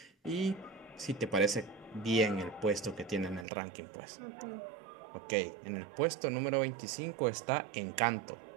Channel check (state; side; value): drops out; left; at 3.5 s